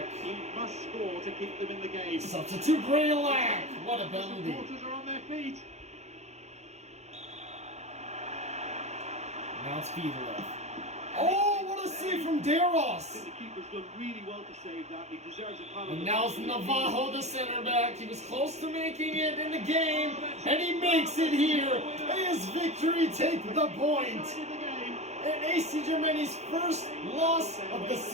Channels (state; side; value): late; left; 0.32 ms